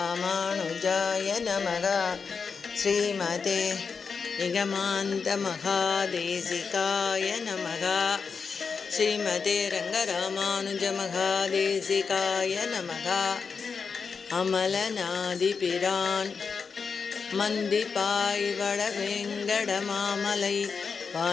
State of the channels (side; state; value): right; quieter; 5.4 dB